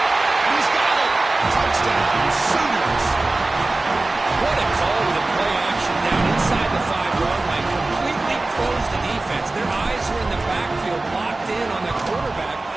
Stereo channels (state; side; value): quieter; left; 3.1 dB